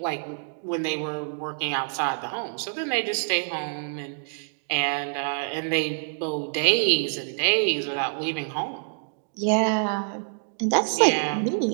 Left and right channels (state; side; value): silent; left; digital silence